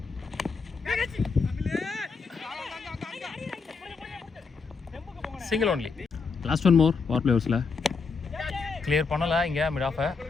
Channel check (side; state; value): right; quieter; 4.9 dB